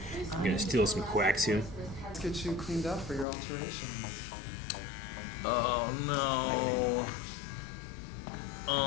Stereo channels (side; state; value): right; drops out; at 3.2 s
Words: gonna steal some coaxium. Let's get you cleaned up for your alteration. Oh no.